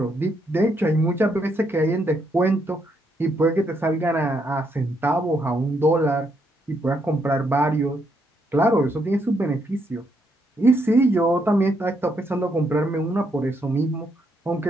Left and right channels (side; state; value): both; normal; correlation 0.76